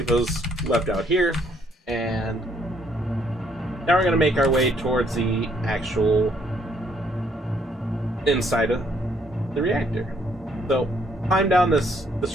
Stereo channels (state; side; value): normal; both; correlation 0.68